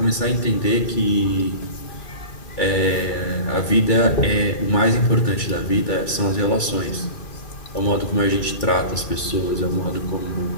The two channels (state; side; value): late; right; 2.4 ms